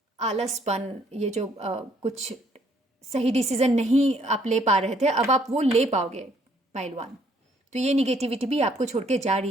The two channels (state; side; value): normal; both; correlation 0.65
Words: आलसपन, ये जो कुछ सही डिसीजन नहीं आप ले पा रहे थे, अब आप वो ले पाओगे पहलवान। तो ये निगेटिविटी भी आपको छोड़ के जा